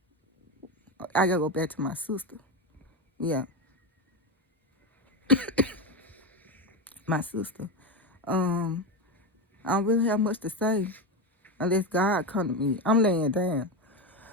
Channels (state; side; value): normal; both; correlation 0.15